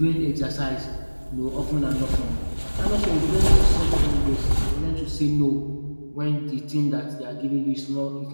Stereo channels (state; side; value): inverted; both; correlation -1.00